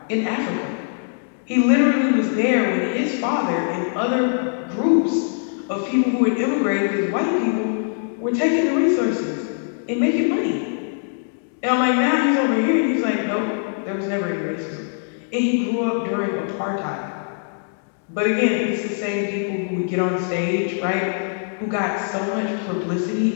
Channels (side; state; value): right; silent; 64 dB below the other